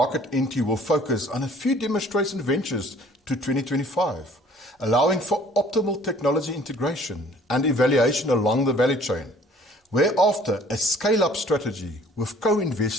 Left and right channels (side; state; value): both; normal; correlation 0.55